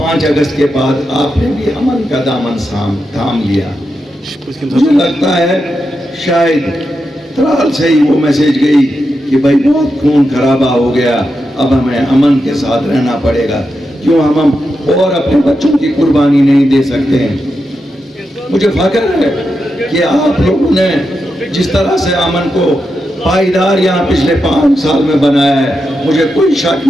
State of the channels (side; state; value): both; normal; correlation 0.87